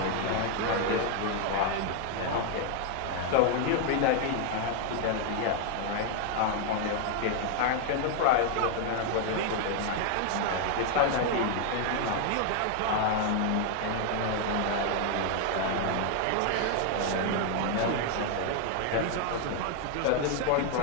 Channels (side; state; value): both; different; correlation 0.00